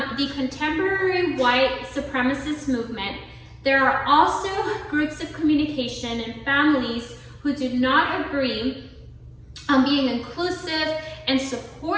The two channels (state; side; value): identical; both; correlation 1.00